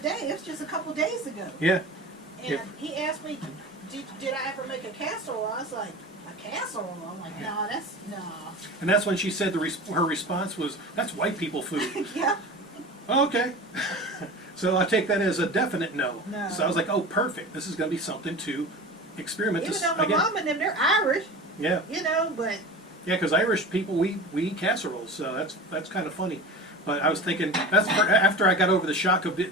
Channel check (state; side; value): normal; both; correlation 0.33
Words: It was just a couple days ago. Yeah. And Yep. he asked me, did I ever make a casserole? I was like, a casserole? I'm like, no, no. And that's when she said her response was, "That's white people food." Yeah. Okay. So I take that as a definite no. No. So I was like, oh, perfect. This is going to be something to experiment. Even though my mom and them, they're Irish. Yeah. You know, but. Yeah, because Irish people, we eat casseroles, so that's kind of funny. But I was thinking, after I got over the shock of